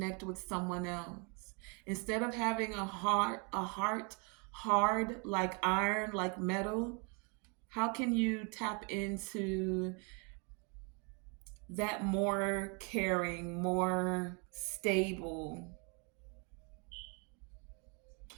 with someone else. Instead of having a heart hard like iron, like metal, how can you tap into that more caring, more stable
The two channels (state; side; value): quieter; left; 34.4 dB